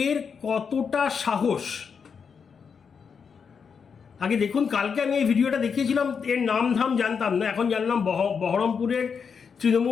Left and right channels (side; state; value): right; quieter; 6.2 dB